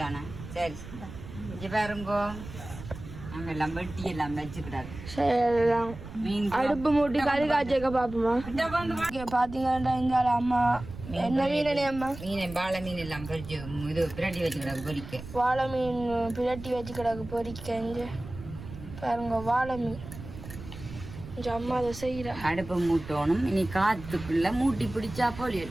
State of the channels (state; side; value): noise; right; rumble, 13 dB below the sound